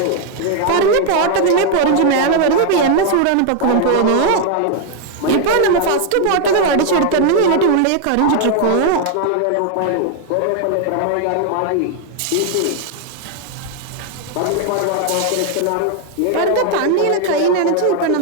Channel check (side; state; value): both; different; correlation 0.00